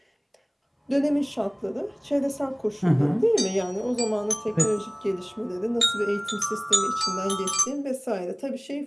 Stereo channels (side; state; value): both; identical; correlation 1.00